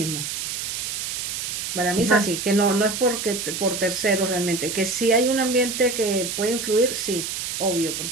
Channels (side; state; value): right; noise; hiss, 4 dB below the sound